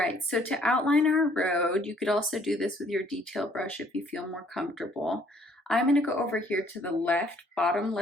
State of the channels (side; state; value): both; normal; correlation 0.62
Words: so to outline our road, you could also do this with your detail brush if you feel more comfortable. I'm going to go over here to the left, bottom